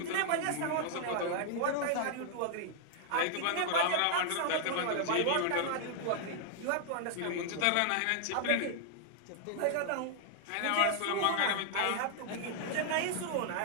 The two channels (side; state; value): both; different; correlation 0.00